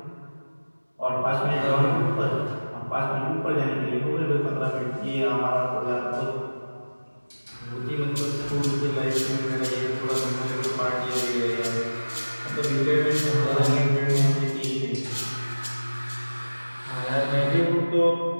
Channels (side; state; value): both; inverted; correlation -1.00